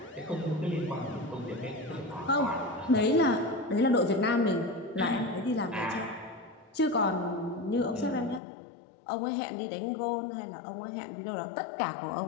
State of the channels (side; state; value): right; drops out; at 8.4 s